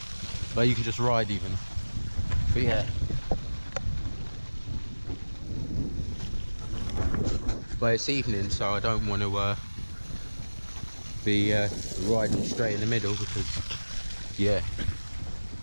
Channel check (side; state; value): both; inverted; correlation -1.00